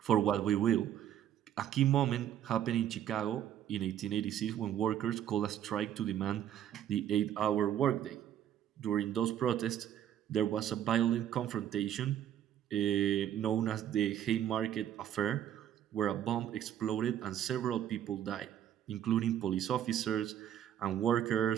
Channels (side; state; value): left; quieter; 10.5 dB